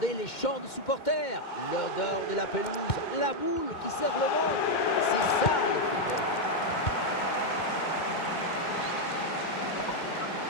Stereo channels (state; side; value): late; right; 2.2 ms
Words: les chants de supporters, l'odeur de la pelouse, la boule qui serre le monde. C'est ça le football.